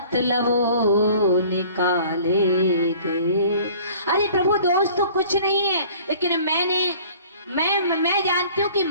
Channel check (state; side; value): inverted; both; correlation -0.49